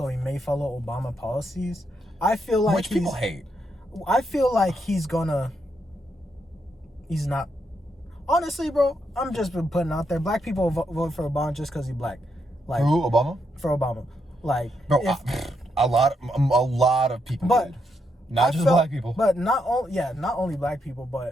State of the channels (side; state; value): both; normal; correlation 0.80